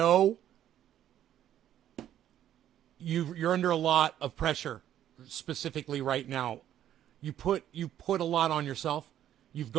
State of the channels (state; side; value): quieter; left; 11.2 dB